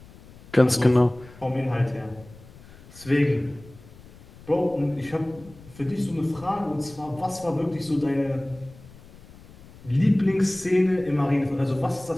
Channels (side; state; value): left; noise; rumble, 21 dB below the sound